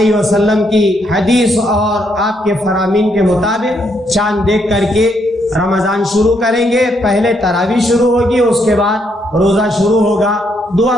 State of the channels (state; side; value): normal; both; correlation 0.75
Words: وسلم کی حدیث اور آپ کے فرامین کے مطابق چاند دیکھ کر کے رمضان شروع کریں گے. پہلے تراویح شروع ہوگی، اس کے بعد روزہ شروع ہوگا. دعا